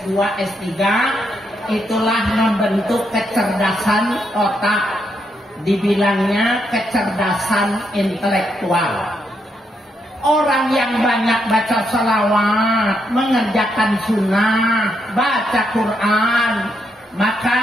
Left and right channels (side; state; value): both; normal; correlation 0.78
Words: S3 itulah membentuk kecerdasan otak. Dibilangnya kecerdasan intelektual. Orang yang banyak baca salawat, mengerjakan sunnah, baca Quran, maka